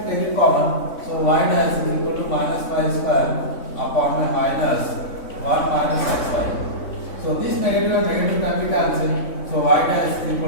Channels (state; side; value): late; right; 3.6 ms